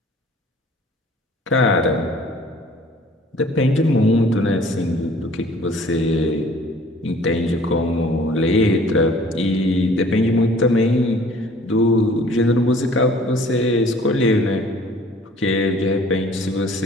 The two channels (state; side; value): normal; both; correlation 0.53